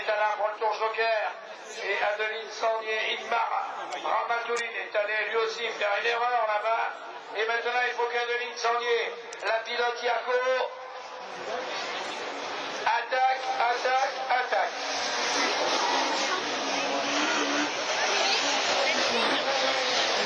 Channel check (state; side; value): identical; both; correlation 1.00